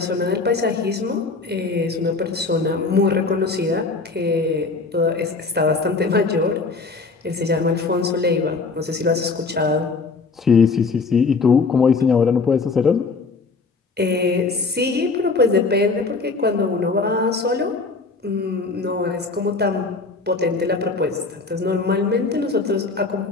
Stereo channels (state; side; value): quieter; right; 4.1 dB